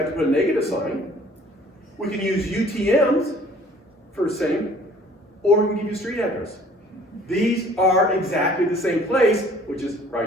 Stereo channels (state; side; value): normal; both; correlation 0.54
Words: to put a negative sign. We can use UTMs for the same, or we can give you a street address. These are exactly the same place, which is